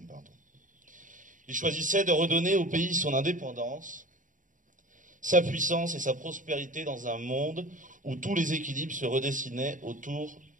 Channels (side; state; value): left; late; 0.38 ms